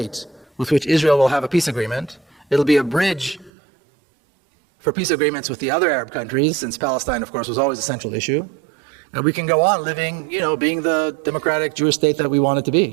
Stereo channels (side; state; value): left; drops out; at 3.5 s